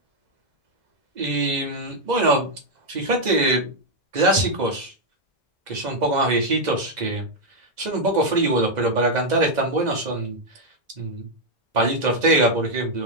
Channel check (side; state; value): left; late; 2.0 ms